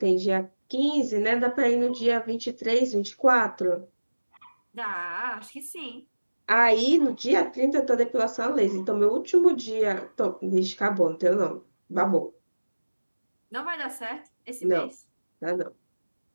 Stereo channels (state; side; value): inverted; both; correlation -1.00